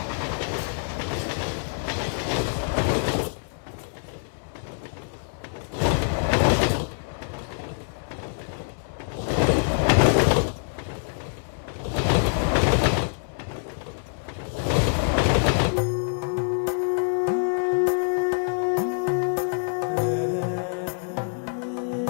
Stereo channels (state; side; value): silent; right; digital silence